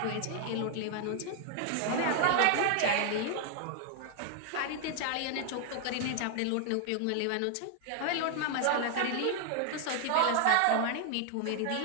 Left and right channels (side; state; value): both; different; correlation 0.00